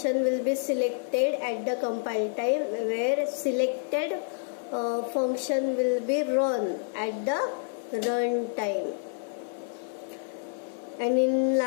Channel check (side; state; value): right; silent; 59 dB below the other